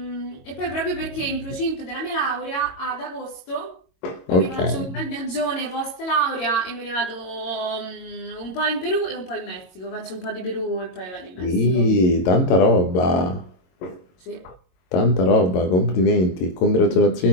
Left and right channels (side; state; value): right; late; 22 ms